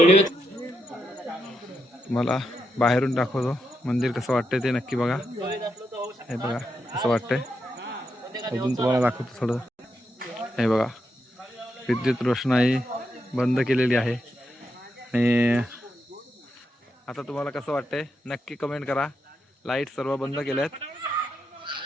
तुम्हाला बाहेरून दाखवतो मंदिर कसं वाटतंय ते नक्की बघा. हे बघा कसं वाटतंय, अजून तुम्हाला दाखवतो थोडं. हे बघा विद्युत रोषणाई बंद केलेली आहे. आणि आता तुम्हाला कसं वाटतंय नक्की कमेंट करा. लाईट सर्व बंद केल्यात.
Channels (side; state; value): both; normal; correlation 0.83